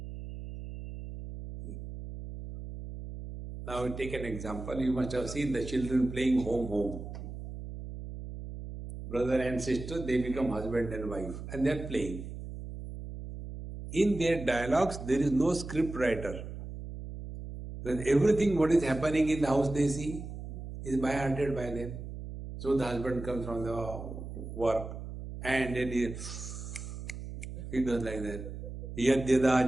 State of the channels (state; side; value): noise; right; hum, 9 dB below the sound